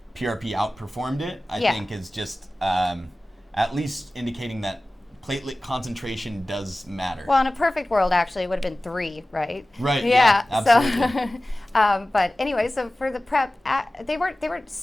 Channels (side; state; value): both; normal; correlation 0.97